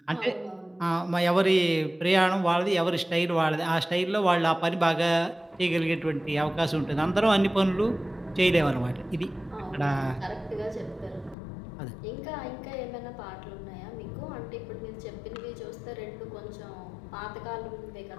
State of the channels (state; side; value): drops out; right; at 11.4 s